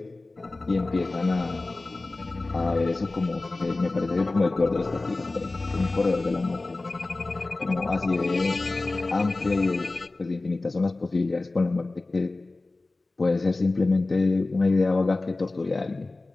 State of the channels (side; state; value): right; quieter; 3.2 dB